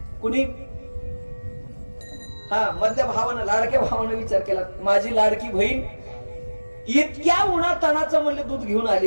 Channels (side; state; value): both; inverted; correlation -1.00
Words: कुणी? मधल्या भावानं, लाडक्या भावानं विचार केला, माझी लाडकी बहीण इतक्या उन्हातानाचं म्हणले दूध घेऊन